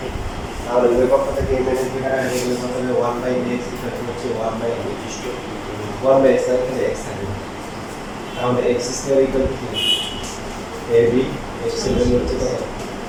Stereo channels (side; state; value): both; identical; correlation 1.00